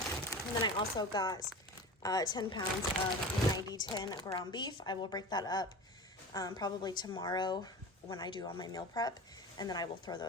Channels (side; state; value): both; normal; correlation 0.33